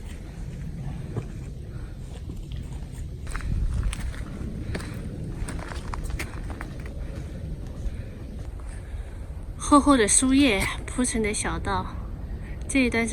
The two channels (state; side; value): identical; both; correlation 1.00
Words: 厚厚的树叶铺成的小道，这一段